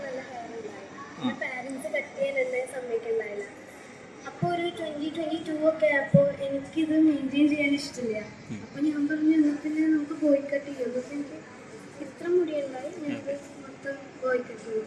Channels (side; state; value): both; identical; correlation 1.00